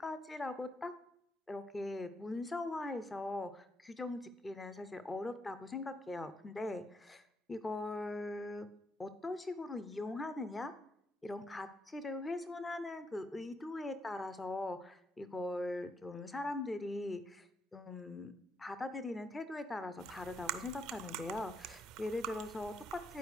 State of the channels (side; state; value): both; normal; correlation 0.78